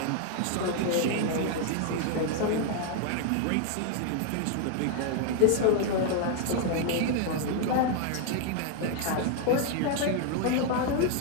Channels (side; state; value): both; different; correlation 0.00